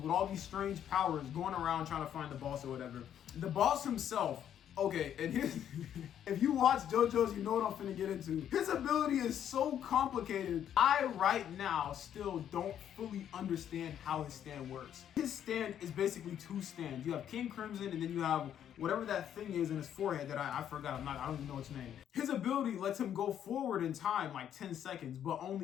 all these strange powers going around trying to find the boss or whatever. The boss himself, okay, and if you watch JoJo's, you know what I'm finna get into. His ability is so complicated. I right now still don't fully understand how his stand works. His stand is basically two stands. You have King Crimson, and then you have whatever that thing is in his forehead that I forgot. I don't even know its name. His ability lets him go forward in time like 10 seconds, but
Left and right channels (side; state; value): right; quieter; 9.8 dB